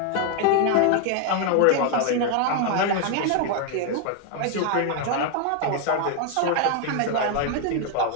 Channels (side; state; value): both; different; correlation 0.01